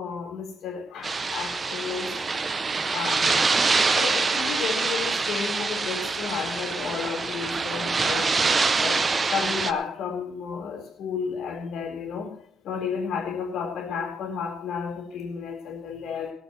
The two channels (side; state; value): both; normal; correlation 0.80